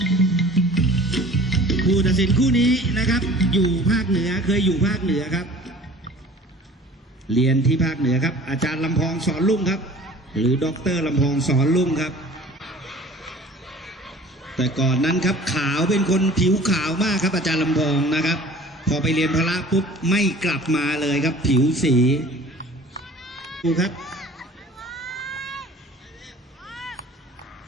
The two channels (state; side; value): normal; both; correlation 0.46